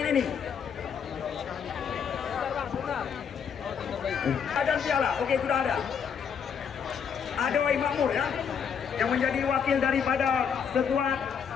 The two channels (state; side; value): quieter; right; 7.1 dB